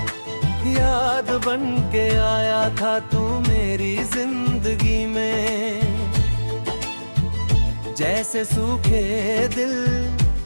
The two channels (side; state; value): both; inverted; correlation -1.00